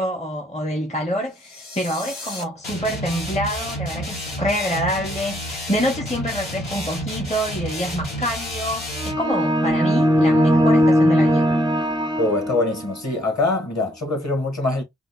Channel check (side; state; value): both; normal; correlation 0.68